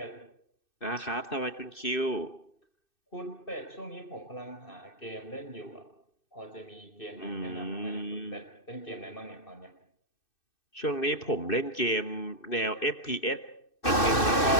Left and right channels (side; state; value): right; late; 2.6 ms